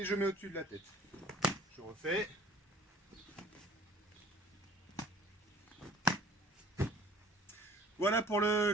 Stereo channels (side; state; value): both; normal; correlation 0.49